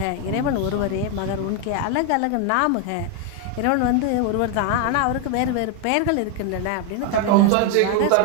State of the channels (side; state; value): both; different; correlation 0.01